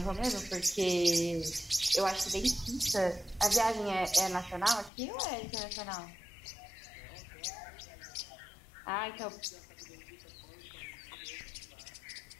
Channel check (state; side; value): drops out; right; at 4.9 s